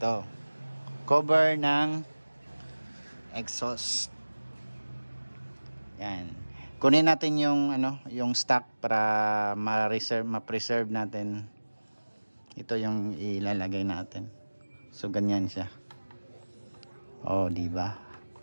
Cover ng exhaust. Yan. Kunin natin yung yung stock para ma-preserve natin. Ito yung ilalagay natin. So ganyan siya. Oh, di ba?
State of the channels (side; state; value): both; inverted; correlation -1.00